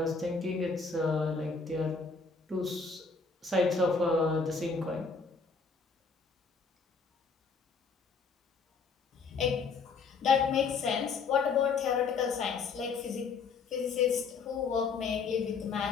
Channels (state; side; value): quieter; right; 4.8 dB